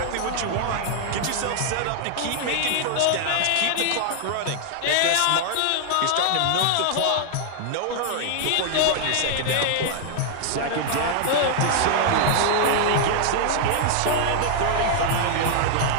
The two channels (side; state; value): both; different; correlation 0.00